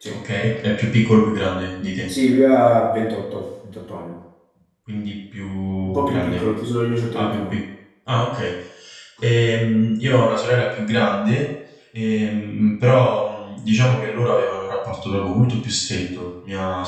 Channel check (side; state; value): both; identical; correlation 1.00